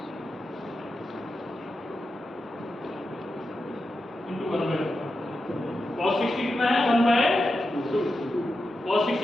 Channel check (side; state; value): both; normal; correlation 0.89